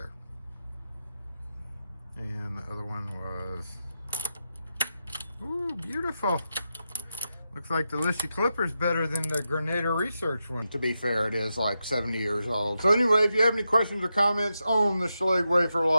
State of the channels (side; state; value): both; inverted; correlation -0.88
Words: And the other one was... Ooh, beautiful. Looks like the Lishi Clipper's better than the Granada Research one. To be fair, it is like 70 years old. So anyway, if you have any questions or comments on the Schlage wafer